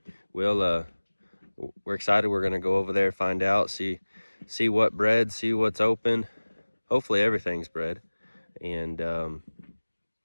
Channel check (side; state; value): both; inverted; correlation -1.00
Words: we're excited. We're gonna go over there, find out, see what bred, see what's open. Hopefully everything's bred. And